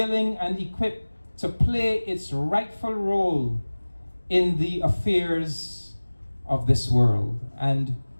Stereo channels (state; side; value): inverted; both; correlation -1.00